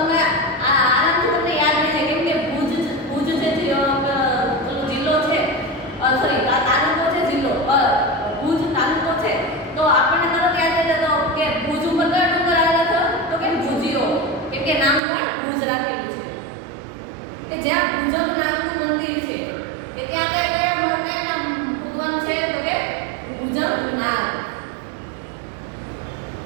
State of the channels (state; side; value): drops out; left; at 15.0 s